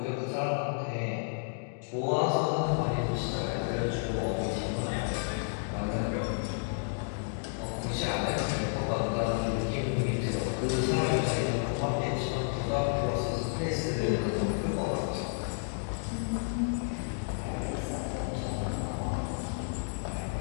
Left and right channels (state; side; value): silent; right; digital silence